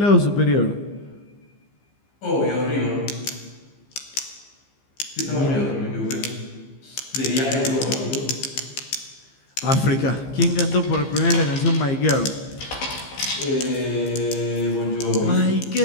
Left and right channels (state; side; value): late; right; 15 ms